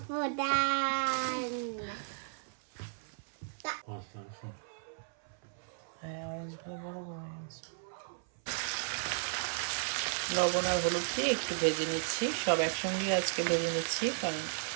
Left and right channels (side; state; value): left; silent; 55 dB below the other